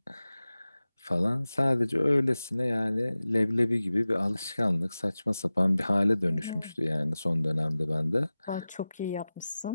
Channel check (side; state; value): both; inverted; correlation -0.96